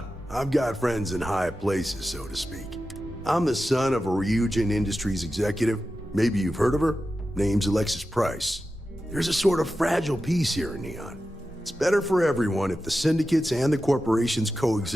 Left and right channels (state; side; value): normal; both; correlation 0.92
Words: I've got friends in high places, so to speak. I'm the son of a Ryujin Industries executive. Maybe you've heard of her? Name's Alexis Price. There's a sort of fragile peace here in Neon. It's better for everyone if the syndicates and the corporations